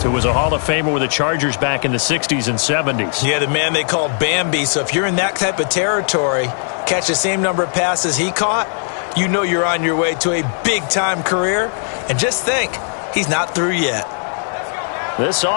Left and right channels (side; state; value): right; silent; digital silence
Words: who was a Hall of Famer with the Chargers back in the 60s and 70s. Yeah, the man they called Bambi. So if you're in that type of territory, catch the same number of passes he caught, you know you're on your way to a big-time career. And just think, he's not through yet. This